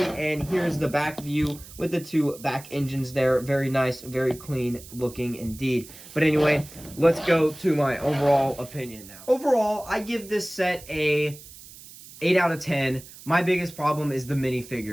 and here's the back view with the 2 back engines there. Very nice, very clean looking indeed. But anyway, let's go to my overall opinion now. Overall, I give this set a 8 out of 10. My biggest problem is the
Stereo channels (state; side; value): noise; right; hiss, 18 dB below the sound